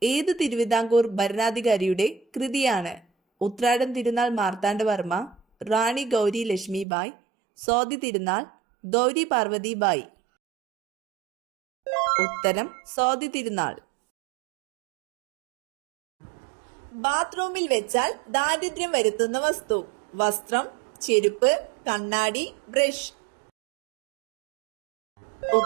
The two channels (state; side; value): drops out; left; at 6.9 s